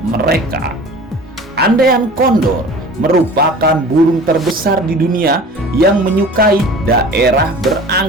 Andean Condor merupakan burung terbesar di dunia yang menyukai daerah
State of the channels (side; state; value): both; normal; correlation 0.42